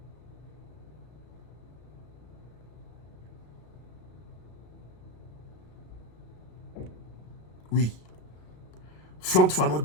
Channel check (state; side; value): late; right; 33 ms